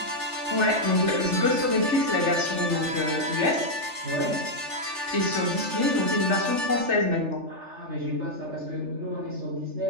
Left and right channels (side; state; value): left; late; 3.4 ms